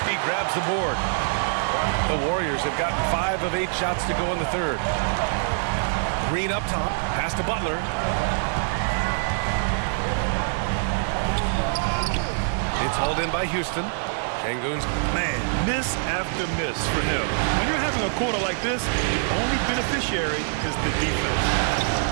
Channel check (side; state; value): left; silent; digital silence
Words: grabs the board. The Warriors have gotten 5 of 8 shots to go in the third. Green up top. Pass to Butler. It's hauled in by Houston. Şengün's Man, miss after miss for him. When you're having a quarter like this, the only beneficiary is the defense.